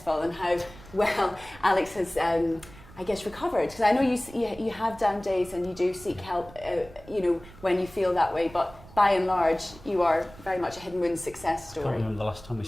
and how well Alex has recovered, because I know you have down days and you do seek help, when you feel that way, but by and large, you are very much a hidden wounds success story. I can't remember the last time we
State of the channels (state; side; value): noise; right; rumble, 20 dB below the sound